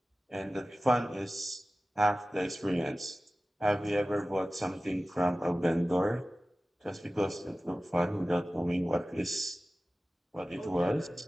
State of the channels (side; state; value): both; normal; correlation 0.96